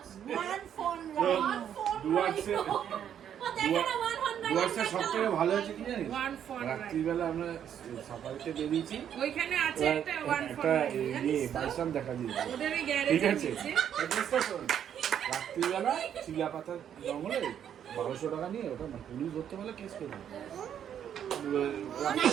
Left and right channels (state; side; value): quieter; left; 9.3 dB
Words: ডুয়ার্সের সবথেকে ভালো হয়েছে কি জানিস ওয়ান ফর রাত্রিবেলা আমরা সাফারিতে বেরিয়েছি ওইখানে আছে একটা ওয়ান ফর একটা ইয়ে বাইসান দেখা দিয়েছে ওদের ওই ঠিক গ্যারেজে আছে দিচ্ছে। অ্যাড্রেসটা শোন। রাত্রিবেলা চিলাপাতার জঙ্গলে 1200 টাকা নিয়ে ওটা মানে পুলিশ ধরতে পারলে কেস করবে